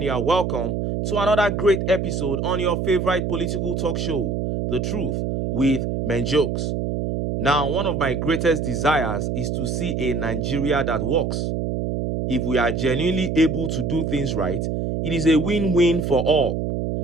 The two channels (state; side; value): noise; right; hum, 1 dB below the sound